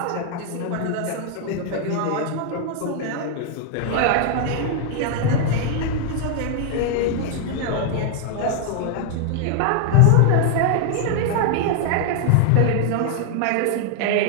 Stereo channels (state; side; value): different; both; correlation 0.00